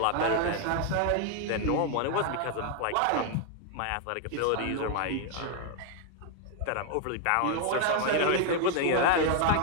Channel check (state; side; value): different; both; correlation 0.01